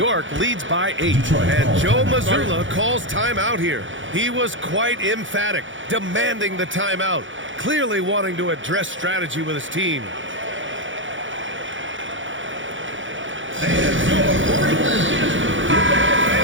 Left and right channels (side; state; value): left; late; 0.56 ms